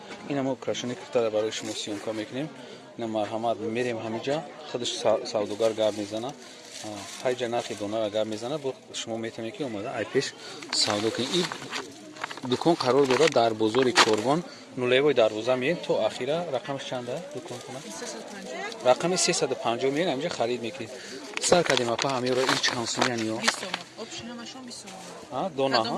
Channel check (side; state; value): both; identical; correlation 1.00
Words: ина мо украшении киртара барои шумо сиёмка мекунем. Ина марҳамат мерем ҳамиҷа худаш савдогар гап мезана, ҳайҷа нархи донара гап мезана, бо шумо метавонед ки омада ай пеш савдо кунед. Ин дукон қарор дорад дар бозори Корбон, нулевои дарвоза меем то ахира. Рақамш чанда дукон кунад? Рақами 350 меем, ҳамиҷа харид мекунед. Сар кардем апа ҳамеро ин чанд сомиян ё? 20 сом. Обшинамашон 20 сом. Дона